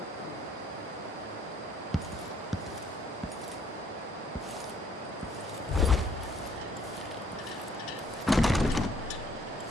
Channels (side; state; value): both; normal; correlation 0.64